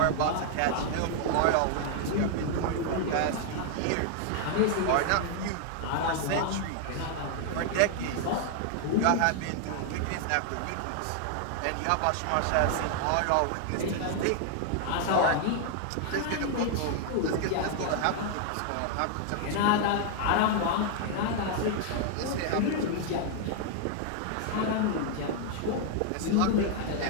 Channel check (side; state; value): both; different; correlation 0.00